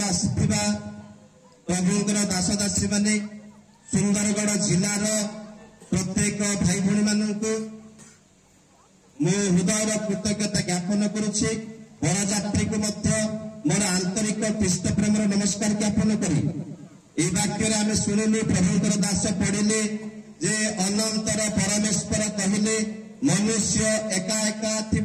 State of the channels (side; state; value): both; identical; correlation 1.00